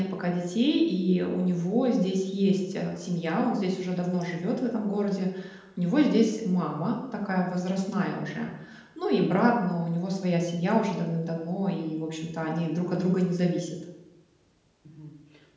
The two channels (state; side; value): identical; both; correlation 1.00